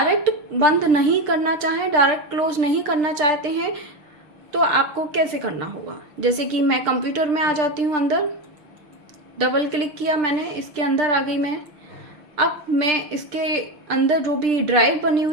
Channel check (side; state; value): left; late; 6.6 ms